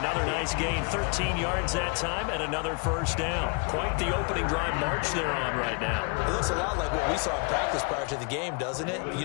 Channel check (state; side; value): quieter; right; 35.0 dB